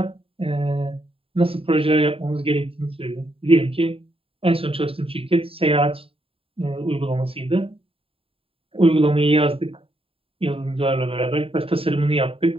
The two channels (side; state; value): left; late; 0.27 ms